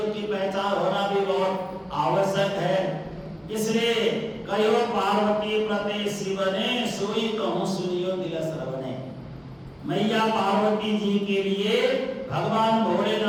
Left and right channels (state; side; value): identical; both; correlation 1.00